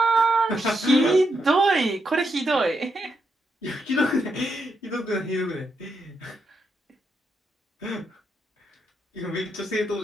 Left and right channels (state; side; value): normal; both; correlation 0.81